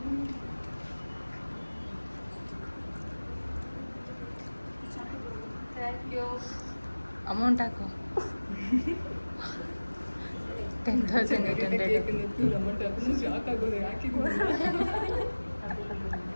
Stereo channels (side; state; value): both; inverted; correlation -1.00